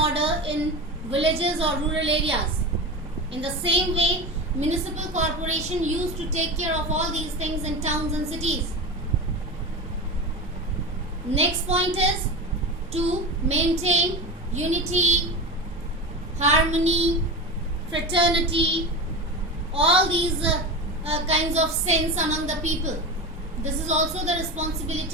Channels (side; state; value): both; normal; correlation 0.25